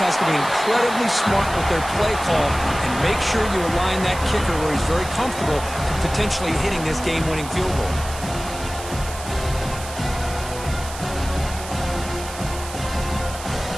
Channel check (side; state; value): right; noise; hiss, 12 dB below the sound